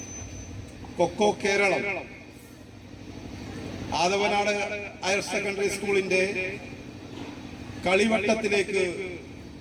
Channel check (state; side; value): identical; both; correlation 1.00